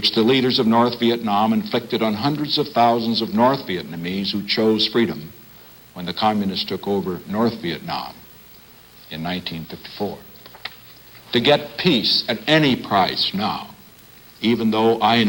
the leaders of North Vietnam inflicted on hundreds of thousands of North Vietnamese who chose freedom when the communists took over North Vietnam in 1954. To get peace at any price now, even though I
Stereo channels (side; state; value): both; identical; correlation 1.00